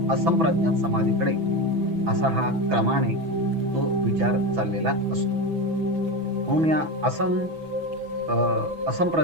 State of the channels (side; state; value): left; late; 6.1 ms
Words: असंप्रज्ञात समाधीकडे असा हा क्रमाने तो विचार चाललेला असतो. म्हणून या